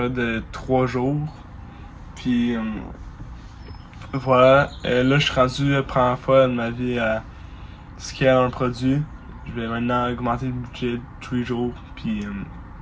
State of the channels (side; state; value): both; identical; correlation 1.00